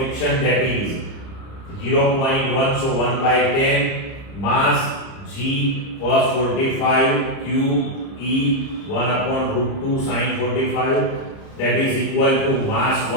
that is 0.1, so 1 by 10. Mass G cos 45 Q E 1 upon root 2 sin 45, that is equal to mass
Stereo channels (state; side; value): late; right; 30 ms